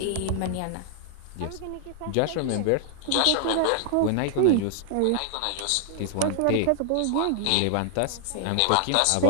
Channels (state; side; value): different; both; correlation -0.01